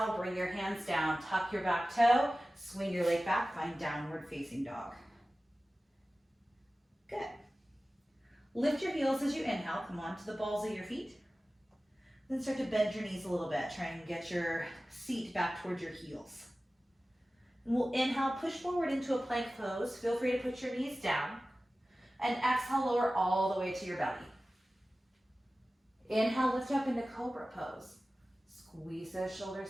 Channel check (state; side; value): normal; both; correlation 0.96